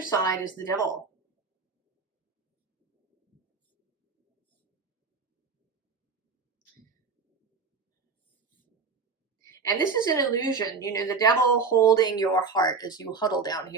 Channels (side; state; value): left; quieter; 4.9 dB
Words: is the Devil. And this is an illusion, you know, the Devil holding your heart as you huddle down